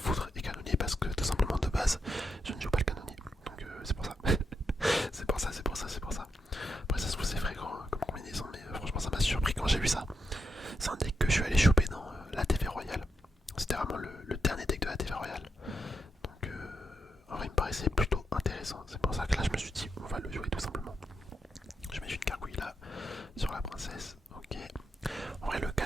et canonnier parce que tout simplement de base je ne joue pas le canonnier. Donc c'est pour ça. c'est pour ça. Après ça se trouve c'est fréquent comme combinaison mais franchement ça m'a surpris quand j'ai vu ça. C'est un deck que je suis allé choper dans la TV Royale. C'était vraiment le dernier deck de la TV Royale. Donc en vrai il me paraissait plutôt intéressant. C'est pour ça que là je me suis dit on va le jouer tout simplement. Je mets une gargouille là sur la princesse. Ok. En vrai le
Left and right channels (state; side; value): normal; both; correlation 0.83